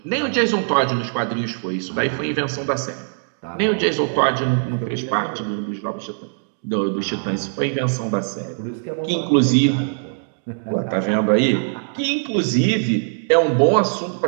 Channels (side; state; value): left; silent; digital silence